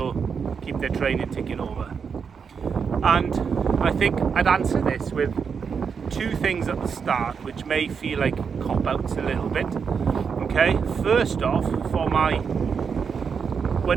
keep their training ticking over. And I think I'd answer this with two things at the start which may feel like cop-outs a little bit. Okay, first off, we're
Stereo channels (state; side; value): quieter; left; 6.2 dB